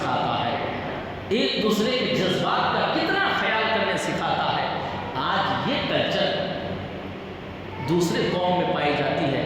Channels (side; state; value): both; identical; correlation 1.00